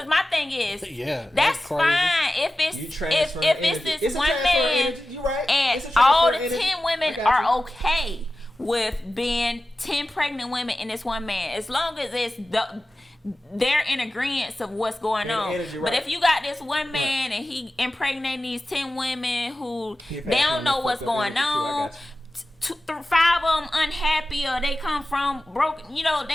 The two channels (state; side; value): normal; both; correlation 0.95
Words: my thing is, that's fine if it's this one man and all the 10 women are okay with being 10 pregnant women and this one man, as long as it's they're in agreement of what's going on. Energy, but if you got this one man and he impregnating these 10 women who they don't know what's going on, 5 of them unhappy or they come from broken,